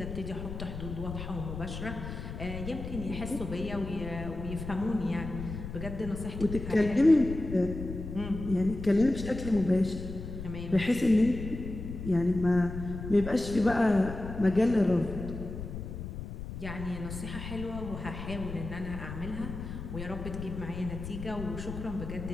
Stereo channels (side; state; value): left; noise; rumble, 8 dB below the sound